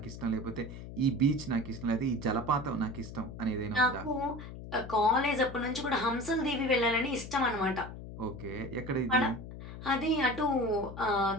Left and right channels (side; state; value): left; noise; hum, 11 dB below the sound